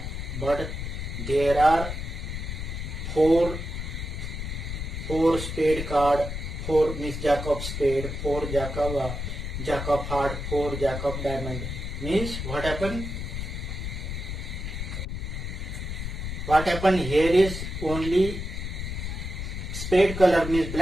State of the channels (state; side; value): noise; left; rumble, 5 dB below the sound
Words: but there are four spade card, 4 means jack of spade, 4 jack of heart, 4 jack of diamond. Means what happened? What happened here is only spade color means